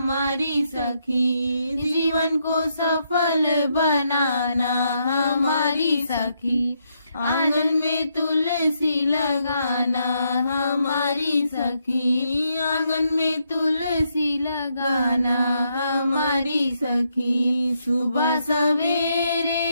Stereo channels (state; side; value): inverted; both; correlation -0.78